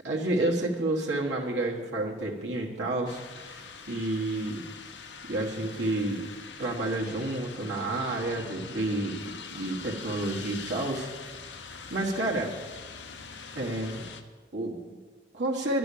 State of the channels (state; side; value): normal; both; correlation 0.43